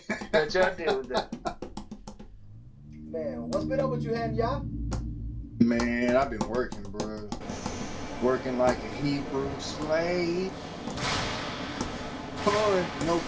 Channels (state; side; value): identical; both; correlation 1.00